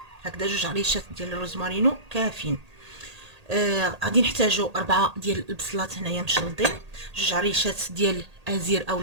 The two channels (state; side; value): late; left; 1.8 ms